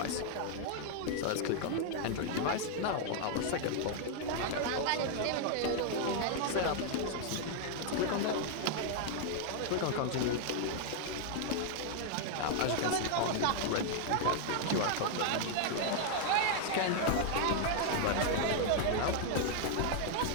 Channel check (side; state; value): both; different; correlation 0.00